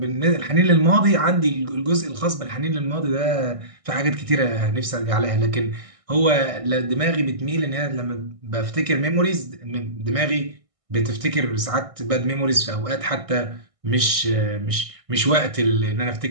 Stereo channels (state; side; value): late; left; 1.6 ms